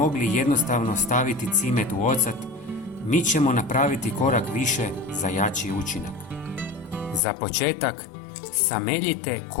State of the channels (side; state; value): right; drops out; at 7.2 s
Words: jednostavno staviti cimet u ocat, mi ćemo napraviti korak više za jači učinak. Za početak, sameljite